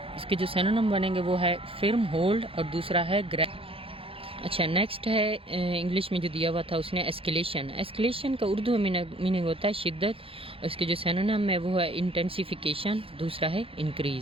اس کے جو سینونیم بنیں گے وہ ہے فرم ہولڈ، اور دوسرا ہے گریپ۔ اچھا نیکسٹ ہے انگلش میں جو دیا ہوا تھا اس نے ایسکیلیشن۔ ایسکیلیشن کا اردو میں میننگ ہوتا ہے شدت، اور اس کے جو سینونیم ہے وہ ہے انٹینسیفیکیشن، دوسرا ہے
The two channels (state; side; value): late; left; 0.27 ms